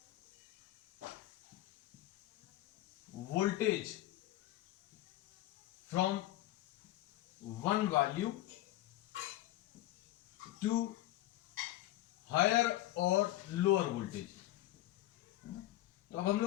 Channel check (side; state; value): right; quieter; 15.4 dB